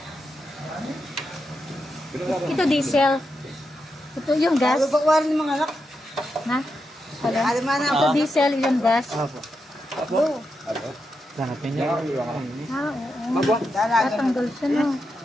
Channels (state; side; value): normal; both; correlation 0.86